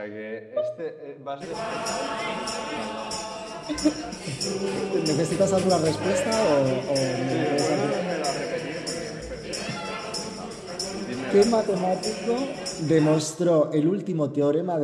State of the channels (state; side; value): identical; both; correlation 1.00